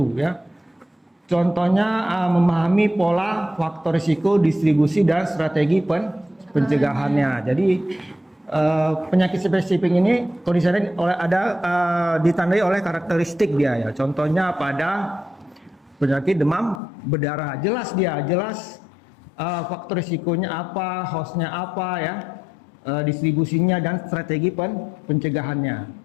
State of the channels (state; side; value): drops out; right; at 16.8 s